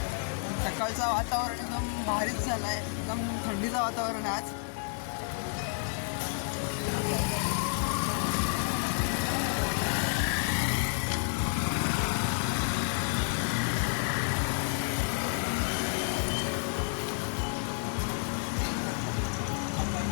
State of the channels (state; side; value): silent; right; 57 dB below the other